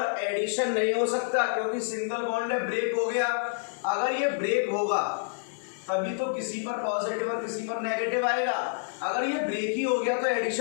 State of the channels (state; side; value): silent; right; 59 dB below the other